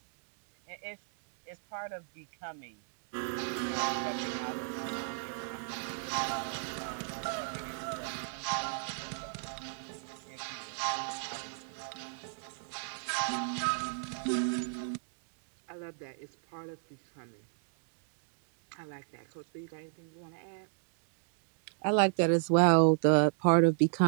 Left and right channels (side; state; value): left; silent; digital silence